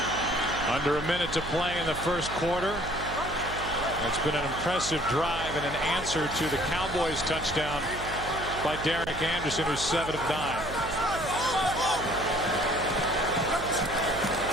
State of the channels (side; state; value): right; noise; hum, 10 dB below the sound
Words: under a minute to play in the first quarter. It's been an impressive drive and an answer to the Cowboys touchdown by Derek Anderson, who's 7 of 9.